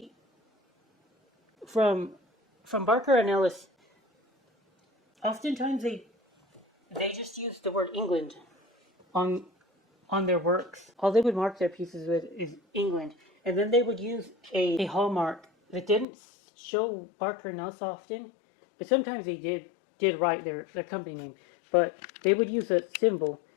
from Barker and Ellis, oftentimes they just use the word England on their works. All they would mark their pieces with is England, and then they would use a hallmark that didn't show Barker and Ellis often, but sometimes they did write their company name. But they would use a symbol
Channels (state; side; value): drops out; right; at 16.1 s